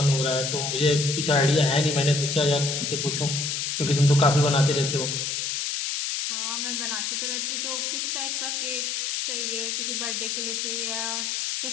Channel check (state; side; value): noise; left; hiss, 1 dB below the sound